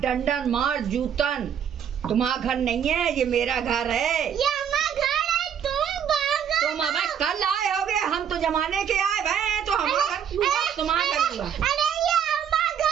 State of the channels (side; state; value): left; quieter; 8.4 dB